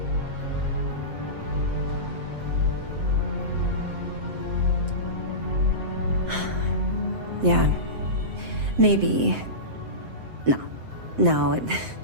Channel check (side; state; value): left; late; 7.8 ms